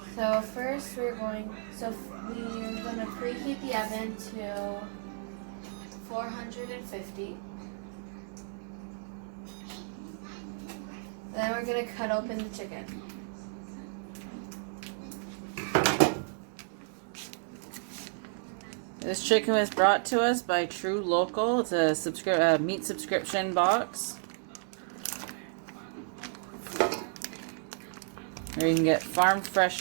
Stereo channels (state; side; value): silent; left; digital silence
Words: So first we're gonna preheat the oven to 450. Then we're gonna cut open the chicken. This chicken was brought to us by Tru Local. It's a meat subscription box. Where you can get farm